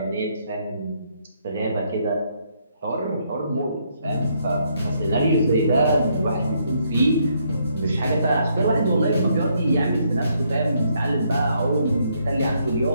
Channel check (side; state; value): both; inverted; correlation -0.73